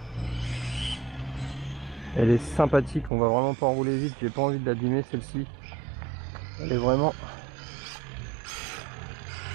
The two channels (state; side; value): drops out; left; at 3.1 s